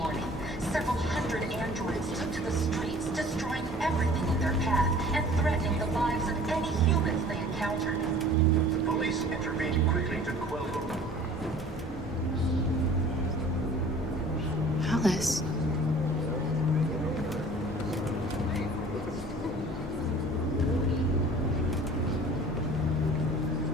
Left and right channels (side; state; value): both; normal; correlation 0.48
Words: Several hundred androids took to the streets, destroying everything in their path and threatening the lives of any humans they encountered. The police intervened quickly to quell them. Alice.